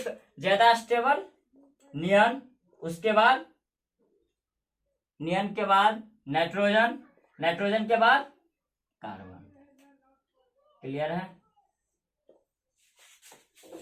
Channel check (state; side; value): identical; both; correlation 1.00